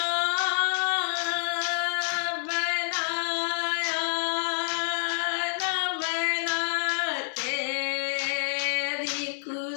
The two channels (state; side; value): silent; right; digital silence